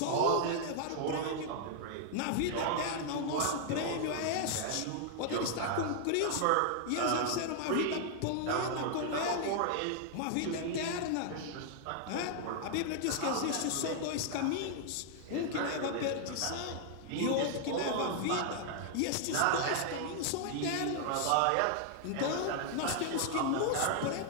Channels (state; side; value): different; both; correlation 0.00